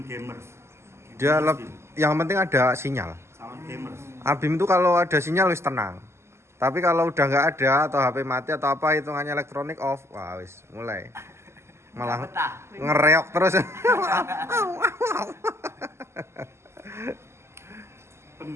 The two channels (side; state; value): left; late; 0.13 ms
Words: gamers. Dia yang penting ada sinyal. Sound gamers. Habim itu kalau ada sinyal wis tenang. Tapi kalau udah nggak ada atau HP mati atau apa hitungannya elektronik off, wah wis mulai malah Betah. ngereok terus.